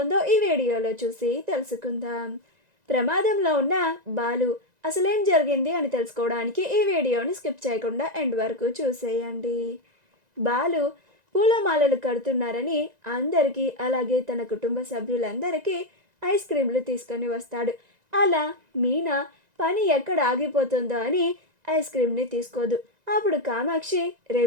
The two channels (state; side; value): late; left; 1.9 ms